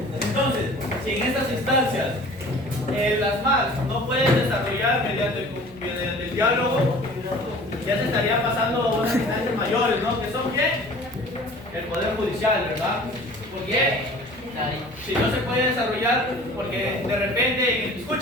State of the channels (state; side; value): normal; both; correlation 0.46